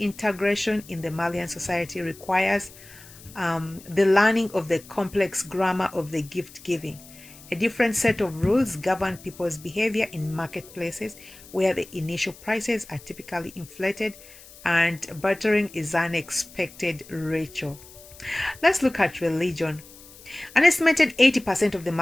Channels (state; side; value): noise; left; hiss, 20 dB below the sound